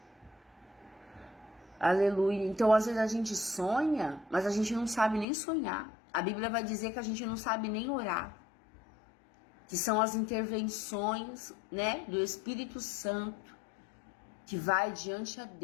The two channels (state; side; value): drops out; right; at 5.2 s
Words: Aleluia. Então, às vezes a gente sonha, mas a gente não sabe nem sonhar. A Bíblia vai dizer que a gente não sabe nem orar. Que são as intervenções, né, do Espírito Santo, que vai diante a